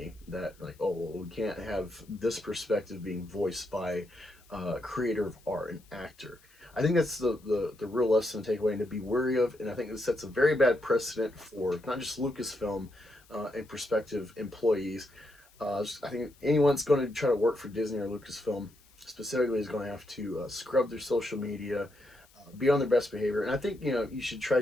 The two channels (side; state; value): left; noise; hiss, 29 dB below the sound